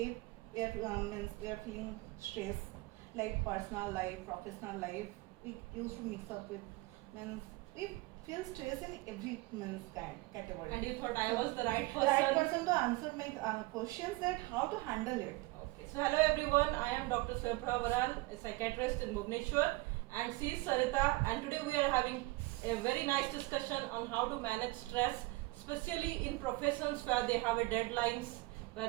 we are feeling stress, like personal life, professional life. We used to mix up with means we feel stress in every means kind category. And you thought I was the right person? Right person to answer my questions that how to handle it. Okay. So hello everyone. I am Dr Swayam Prava Baral, a psychiatrist in Bhubaneswar, and she is Sarita. And today we are having a very nice discussion on how to manage stress, especially in professions where they have a deadlines,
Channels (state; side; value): quieter; left; 22.2 dB